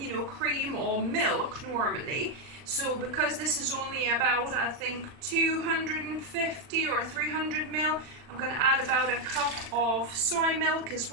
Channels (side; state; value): left; late; 39 ms